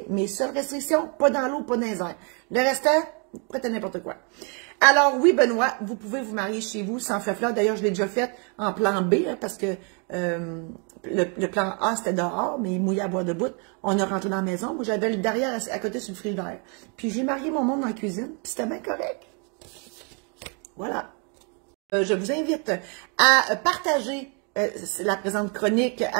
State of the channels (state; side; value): quieter; left; 36.7 dB